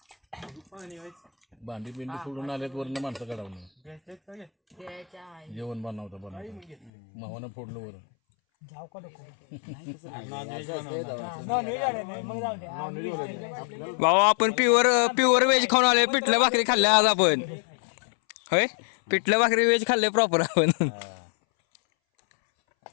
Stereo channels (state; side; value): drops out; right; at 6.9 s